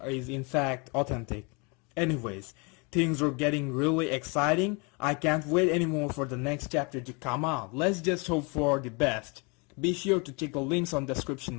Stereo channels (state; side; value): quieter; right; 31.2 dB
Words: is in fact authentic. Anyways, things are getting really exciting. I can't wait anymore for the next chapter to come out. Let's just hope for the best. Be sure to check the links on the